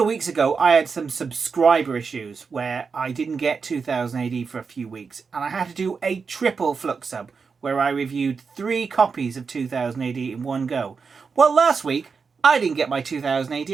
of weeks ago, I had some subscriber issues where I didn't get 2000 AD for a few weeks, and I had to do a triple Flux Sub where I reviewed 3 copies of 2000 AD in one go. Well, last week I didn't get my 2000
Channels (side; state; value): left; quieter; 5.3 dB